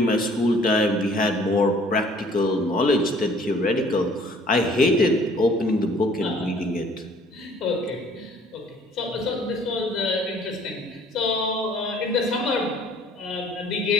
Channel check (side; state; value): both; normal; correlation 0.56